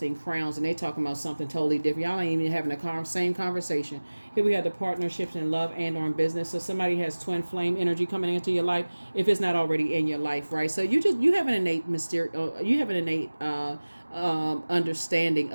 crowns, and they talking about something totally different. Y'all ain't even having the same conversation. Here we have the partnerships in love and or in business. So somebody has twin flame energy coming into your life, if it's not already in your life, right? So you have an innate understanding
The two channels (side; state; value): both; inverted; correlation -1.00